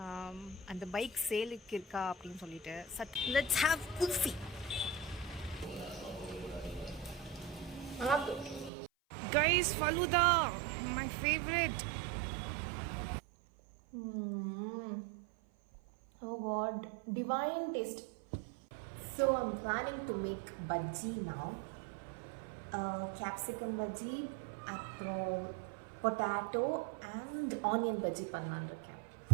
அந்த பைக் சேலுக்கு இருக்கா அப்படின்னு சொல்லிட்டு. Let's have kulfi. Guys, falooda my favourite. Oh god, divine taste. So I'm planning to make bhaji now. Capsicum bhaji, அப்புறம் பொட்டேட்டோ அண்ட் ஆனியன் பஜ்ஜி பண்ணலான்னு இருக்கேன்.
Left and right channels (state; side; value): drops out; left; at 8.7 s